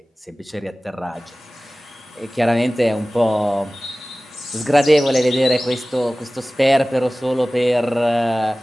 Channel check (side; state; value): both; normal; correlation 0.97